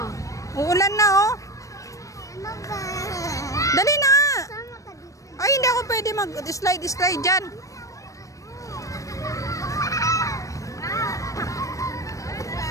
Uulan na, oh. Dali na nga. Ay, hindi ako pwede mag-slide dyan.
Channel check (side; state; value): right; late; 0.16 ms